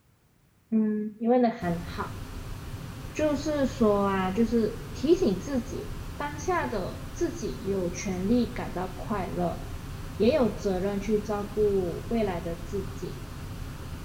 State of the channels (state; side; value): identical; both; correlation 1.00